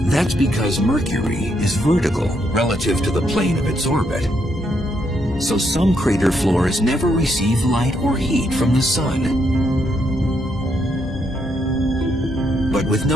That's because Mercury is vertical relative to the plane of its orbit. So some crater floors never receive light or heat from the sun. But with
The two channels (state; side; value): normal; both; correlation 0.76